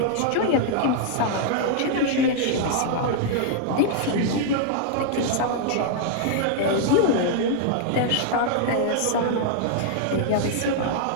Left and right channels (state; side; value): different; both; correlation 0.00